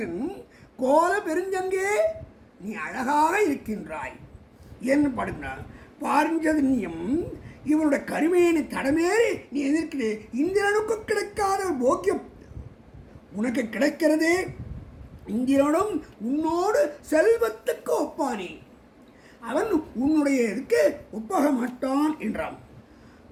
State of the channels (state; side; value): identical; both; correlation 1.00